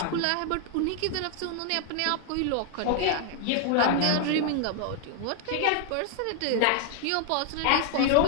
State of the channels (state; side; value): different; both; correlation 0.00